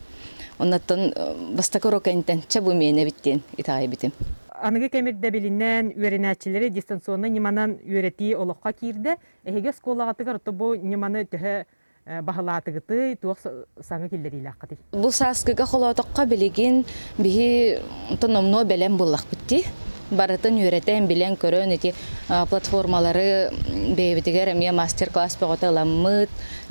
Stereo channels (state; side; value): inverted; both; correlation -1.00